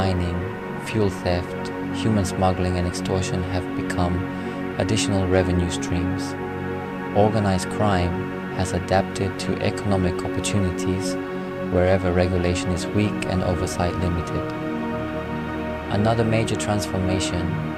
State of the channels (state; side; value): identical; both; correlation 1.00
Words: fuel theft, human smuggling, and extortion have become additional revenue streams. Organized crime has adapted to economic opportunities wherever regulation is weak and oversight limited. Another major transformation